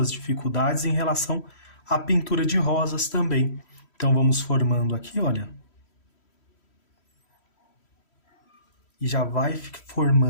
dificuldades em relação à pintura de rosas também. Então, vamos formando aqui, olha. E já vai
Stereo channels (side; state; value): right; late; 3.1 ms